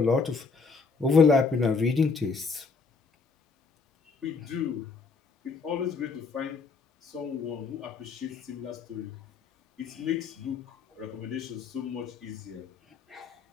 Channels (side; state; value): right; quieter; 4.7 dB